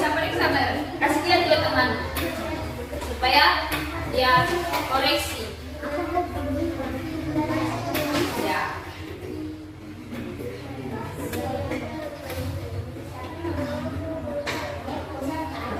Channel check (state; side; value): identical; both; correlation 1.00